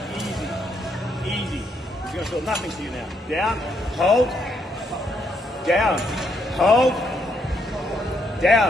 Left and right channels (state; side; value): normal; both; correlation 0.75